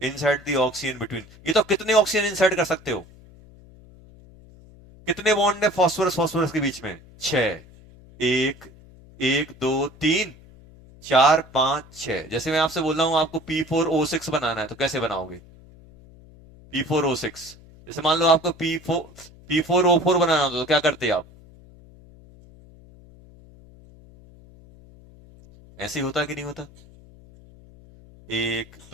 इंसर्ट द ऑक्सीजन बिटवीन। ये तो कितने ऑक्सीजन इंसर्ट कर सकते हो, कितने बॉन्ड है फॉस्फोरस फॉस्फोरस के बीच में, 6। 1 1 2 3 4 5 6। जैसे मैं आपसे बोल रहा हूं आपको P4O6 बनाना है तो कैसे बनाओगे, P4O6। जैसे मान लो आपको P4O4 बनाना हो तो क्या करते आप, ऐसे ही होता कि नहीं होता, 1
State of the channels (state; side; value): noise; left; hum, 23 dB below the sound